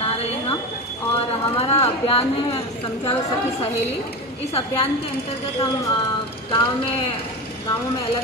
रहे हैं हम, और हमारा अभियान है समझाओ सखी सहेली। इस अभियान के अंतर्गत हम गाँवों में अलग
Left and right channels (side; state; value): both; normal; correlation 0.23